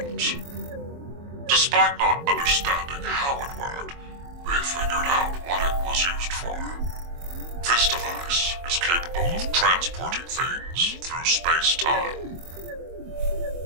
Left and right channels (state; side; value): late; left; 24 ms